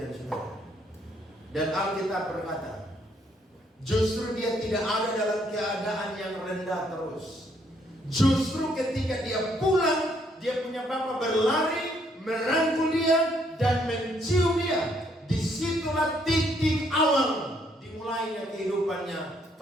saudara. Dan Alkitab berkata, justru dia tidak ada dalam keadaan yang rendah terus. Justru ketika dia pulang, dia punya bapa berlari, merangkul dia dan mencium dia. Disitulah titik awal dimulainya kehidupannya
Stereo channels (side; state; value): both; normal; correlation 0.70